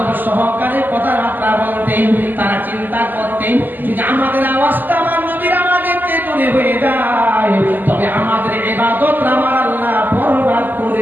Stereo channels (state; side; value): late; left; 0.088 ms